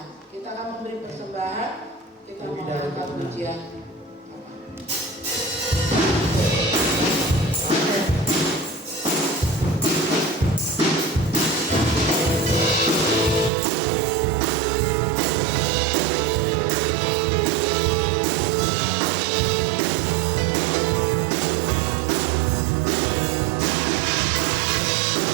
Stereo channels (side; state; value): left; drops out; at 13.5 s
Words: Kita akan memberi persembahan, kita mengangkat pujian.